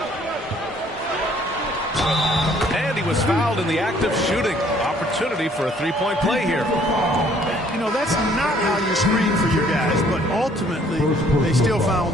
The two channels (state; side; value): normal; both; correlation 0.61